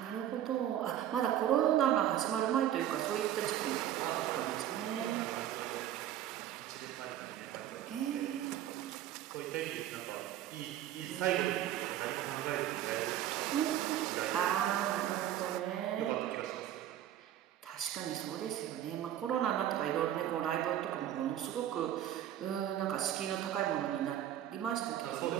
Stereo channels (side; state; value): left; quieter; 11.7 dB